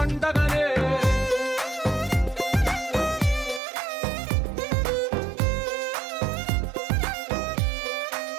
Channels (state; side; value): drops out; left; at 3.6 s